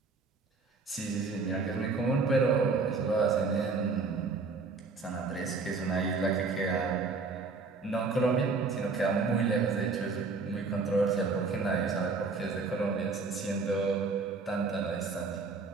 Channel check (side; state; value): left; quieter; 4.3 dB